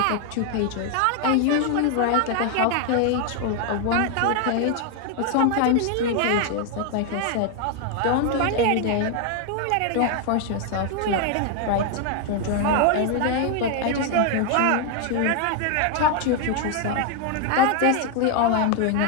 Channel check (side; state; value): both; different; correlation 0.00